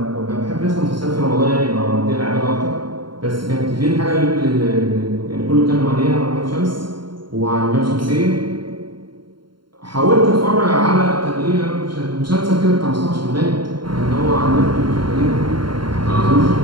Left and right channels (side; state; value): left; late; 0.72 ms